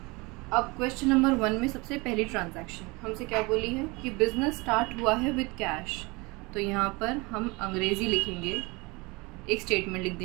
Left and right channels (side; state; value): left; quieter; 25.6 dB